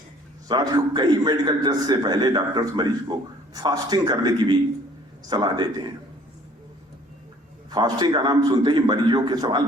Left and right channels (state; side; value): normal; both; correlation 0.55